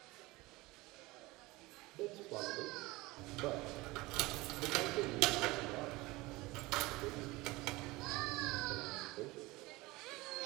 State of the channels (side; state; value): left; quieter; 21.4 dB